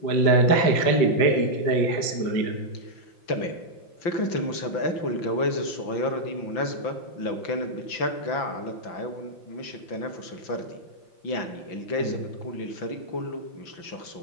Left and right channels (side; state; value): right; late; 5.9 ms